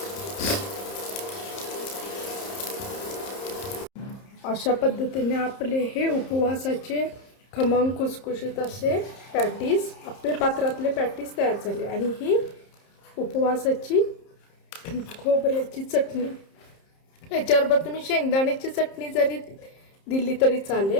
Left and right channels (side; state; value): right; late; 30 ms